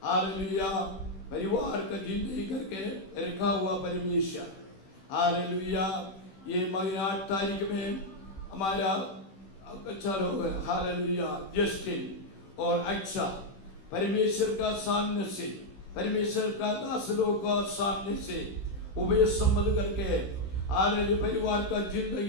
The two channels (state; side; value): late; right; 16 ms